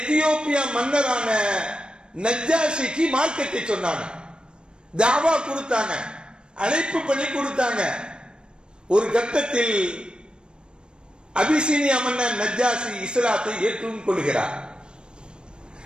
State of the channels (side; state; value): left; late; 0.052 ms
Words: மன்னரான நஜ்ஜாஷிக்கு மார்க்கத்தை சொன்னாங்க, தாவா கொடுத்தாங்க, அழைப்பு பண்ணி கொடுத்தாங்க. ஒரு கட்டத்தில் அபிசீனியா மன்னர் நஜ்ஜாஷி இஸ்லாத்தை ஏற்றுக் கொள்கிறார்.